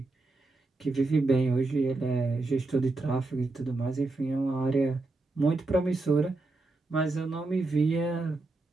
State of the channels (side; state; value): left; quieter; 3.3 dB